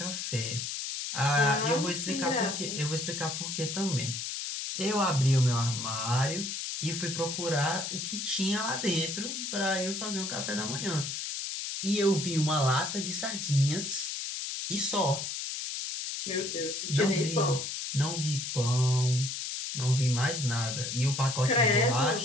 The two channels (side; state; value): left; noise; hiss, 4 dB below the sound